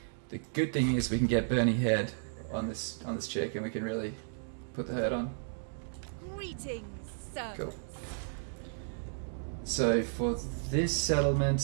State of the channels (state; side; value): silent; left; digital silence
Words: The good thing is we can get Bernie Head on this chick and we can really put the hurt on. Greetings, sir. Cool. So for this